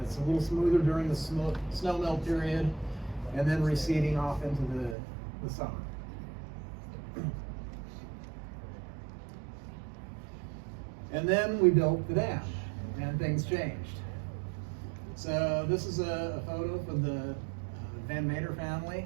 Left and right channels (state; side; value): drops out; left; at 5.0 s